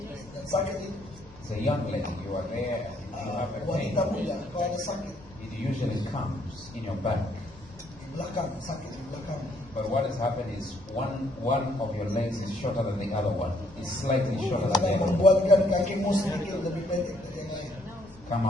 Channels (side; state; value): left; noise; rumble, 22 dB below the sound